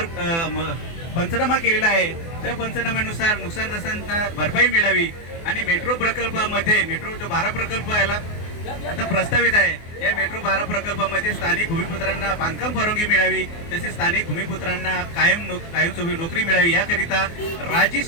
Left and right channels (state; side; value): late; right; 24 ms